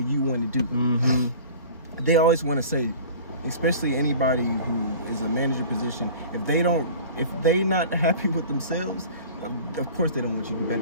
want to do them. They always want to say, especially anybody who is a manager position, if they not happy with themselves, of course they don't want you to be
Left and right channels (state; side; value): inverted; both; correlation -0.42